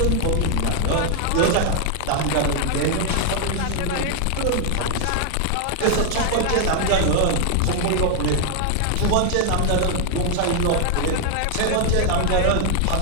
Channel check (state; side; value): different; both; correlation 0.00